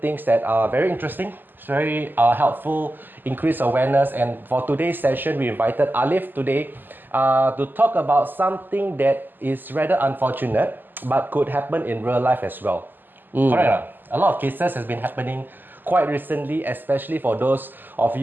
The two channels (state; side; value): late; left; 0.090 ms